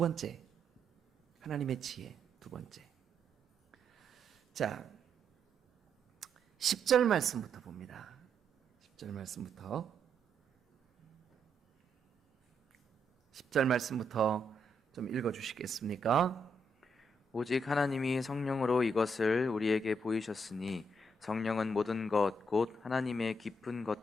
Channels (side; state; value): both; normal; correlation 0.77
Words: 하나님의 지혜. 두 번째, 자 10절 말씀부터 봅니다. 10절 말씀부터 10절 말씀부터 좀 읽어주시겠습니까? 오직 하나님이 성령으로 이것을 우리에게 보이셨으니 성령은 모든 것 곧 하나님의 깊은